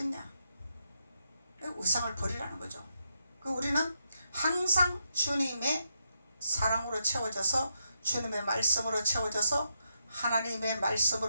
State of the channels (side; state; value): both; inverted; correlation -0.81